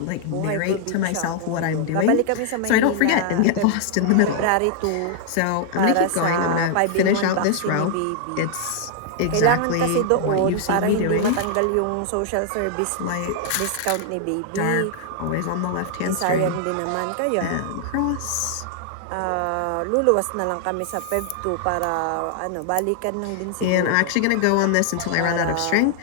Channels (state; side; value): different; both; correlation -0.01